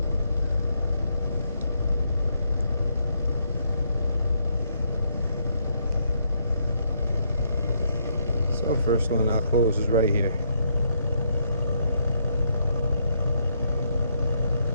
First one I'll close is right here.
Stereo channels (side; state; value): both; inverted; correlation -0.74